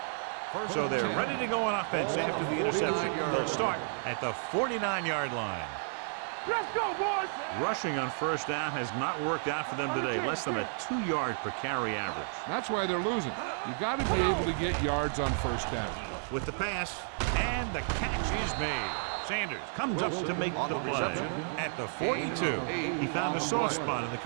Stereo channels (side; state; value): left; silent; digital silence